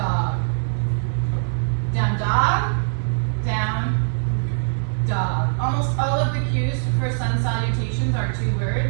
Down, dog. Down, dog. Almost all of the cues for sun salutations are two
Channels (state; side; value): silent; left; 64 dB below the other